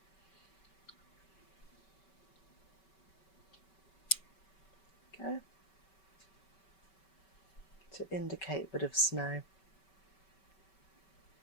Okay, to indicate a bit of snow.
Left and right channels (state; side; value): late; right; 5.2 ms